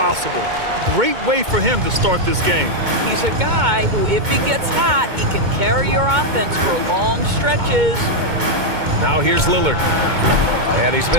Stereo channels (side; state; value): left; late; 2.2 ms